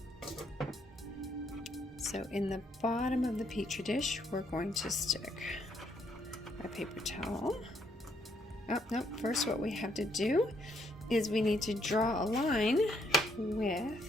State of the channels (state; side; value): normal; both; correlation 0.72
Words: So in the bottom of the petri dish, we're going to stick a paper towel. Oh, no, first what we have to do is we need to draw a line